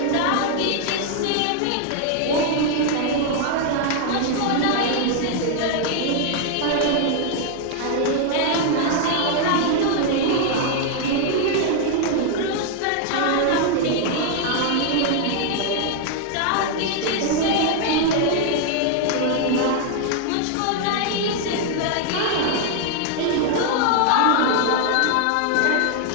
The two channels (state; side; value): different; both; correlation 0.00